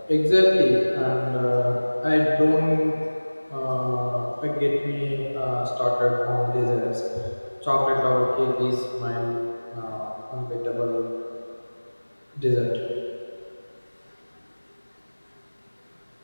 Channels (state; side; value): inverted; both; correlation -1.00